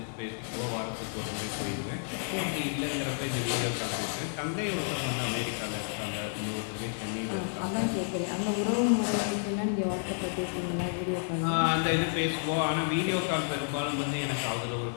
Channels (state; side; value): silent; right; digital silence